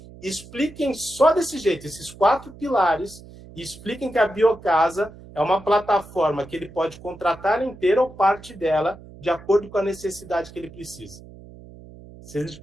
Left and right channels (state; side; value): noise; right; hum, 19 dB below the sound